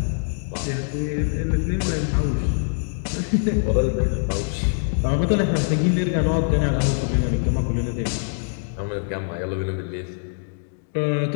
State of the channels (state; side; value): silent; right; digital silence